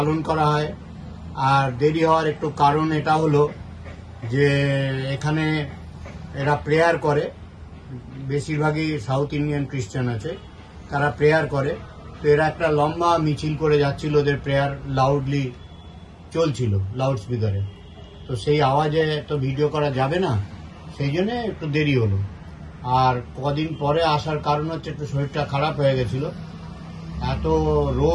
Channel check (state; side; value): identical; both; correlation 1.00